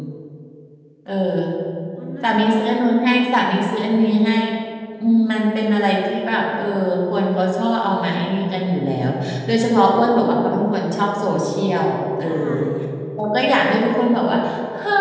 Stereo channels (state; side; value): identical; both; correlation 1.00